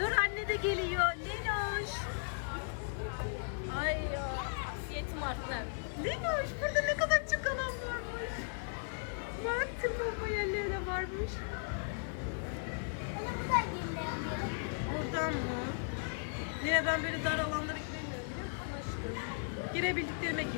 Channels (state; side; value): silent; right; digital silence